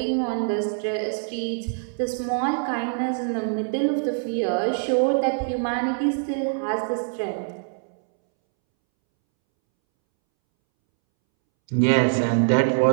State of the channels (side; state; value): left; silent; 62 dB below the other